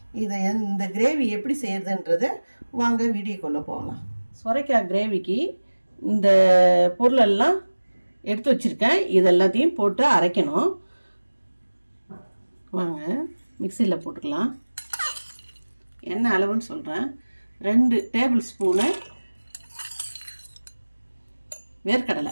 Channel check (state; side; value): inverted; both; correlation -1.00